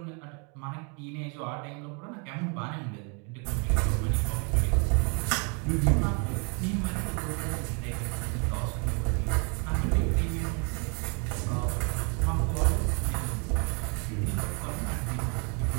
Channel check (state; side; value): quieter; left; 35.0 dB